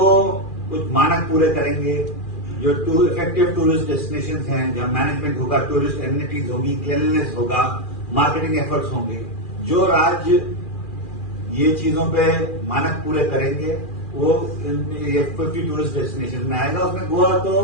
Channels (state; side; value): late; right; 2.4 ms